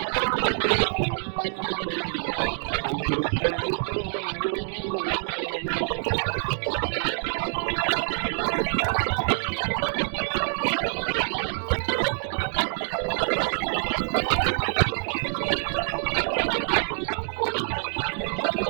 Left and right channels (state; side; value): silent; left; digital silence